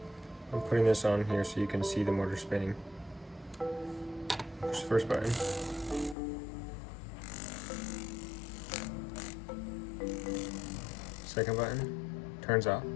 I'm putting this on here so you can see the motor spinning. Push the first button. Second button, turns off.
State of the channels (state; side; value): drops out; right; at 6.2 s